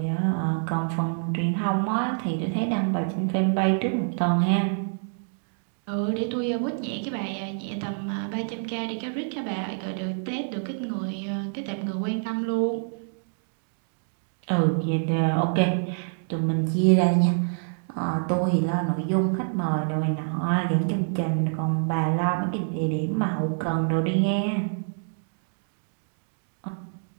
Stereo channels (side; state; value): left; silent; digital silence